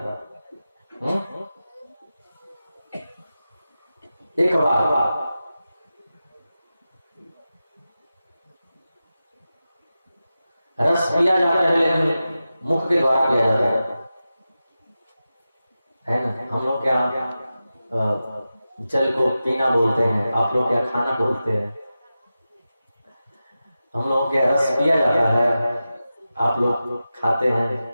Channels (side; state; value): both; inverted; correlation -0.93